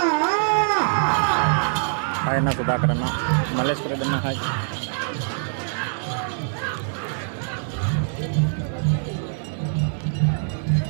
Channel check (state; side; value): silent; left; 63 dB below the other